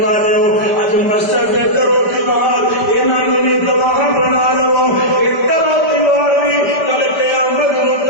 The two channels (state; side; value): late; right; 5.1 ms